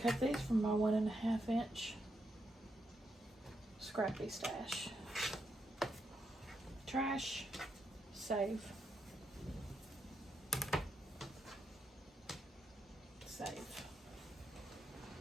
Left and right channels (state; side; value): normal; both; correlation 0.81